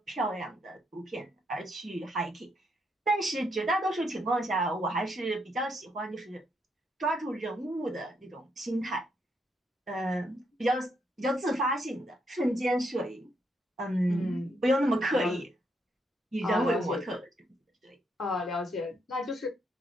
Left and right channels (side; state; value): both; normal; correlation 0.77